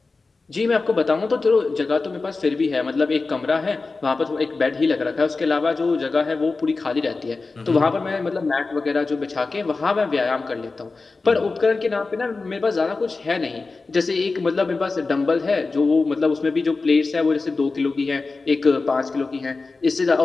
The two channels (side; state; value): right; quieter; 3.8 dB